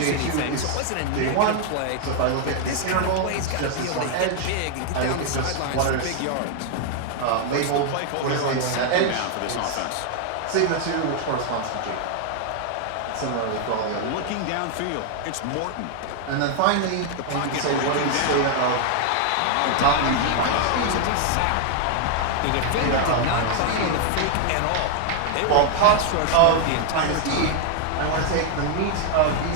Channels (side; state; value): both; different; correlation 0.00